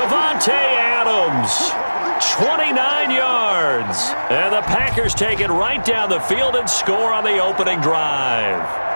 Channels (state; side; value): inverted; both; correlation -1.00